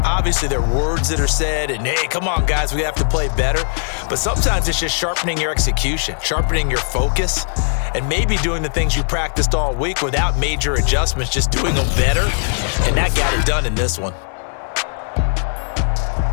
Obviously, there are words that are said, and, hey, come on, guys, we have to play better. But sometimes it's just sharpening your execution, sharpening your focus, and maybe doing the things you practiced all week without major adjustments, just doing them better. And that got it done in this one.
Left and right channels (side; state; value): right; silent; 63 dB below the other